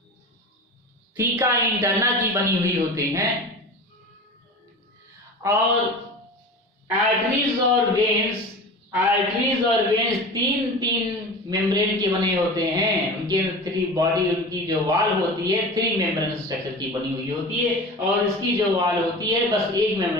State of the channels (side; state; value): both; normal; correlation 0.33